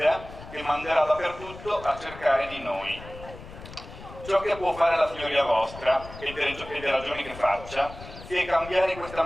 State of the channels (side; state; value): left; noise; rumble, 15 dB below the sound